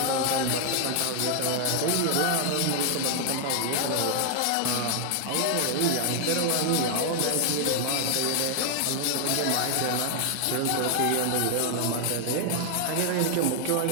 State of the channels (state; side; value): different; both; correlation 0.00